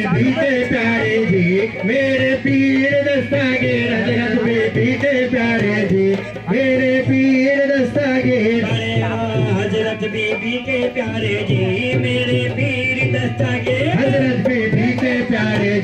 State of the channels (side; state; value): both; identical; correlation 1.00